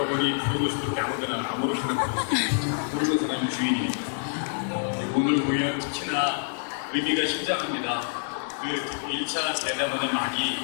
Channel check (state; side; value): silent; right; digital silence